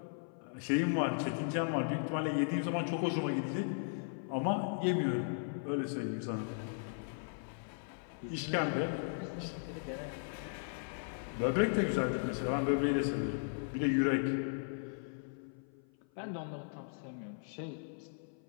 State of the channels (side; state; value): right; silent; 53 dB below the other